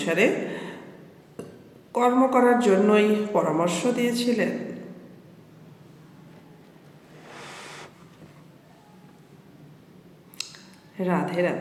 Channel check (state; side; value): identical; both; correlation 1.00